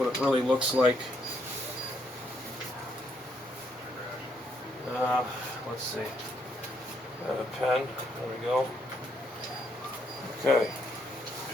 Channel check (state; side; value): normal; both; correlation 0.73